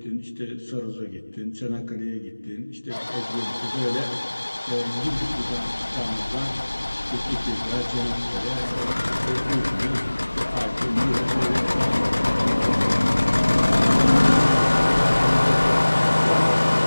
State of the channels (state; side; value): inverted; both; correlation -1.00